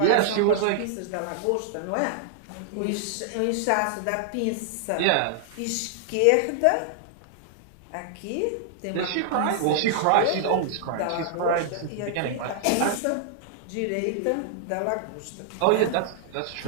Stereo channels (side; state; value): both; different; correlation -0.01